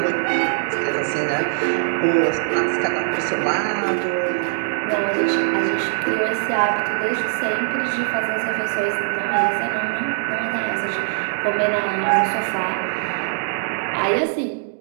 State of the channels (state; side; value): silent; left; digital silence